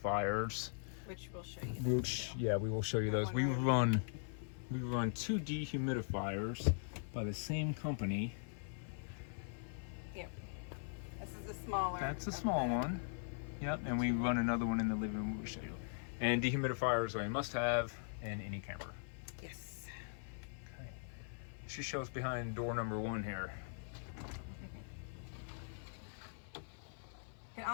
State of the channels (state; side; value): silent; right; 50 dB below the other